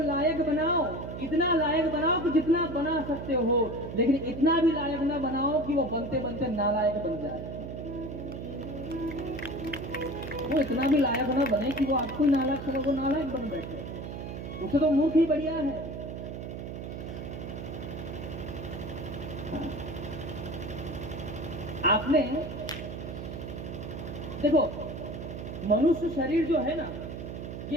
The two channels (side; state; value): right; noise; hum, 8 dB below the sound